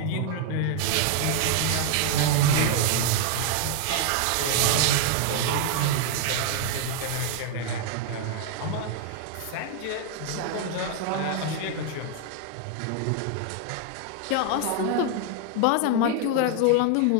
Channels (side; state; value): both; different; correlation 0.00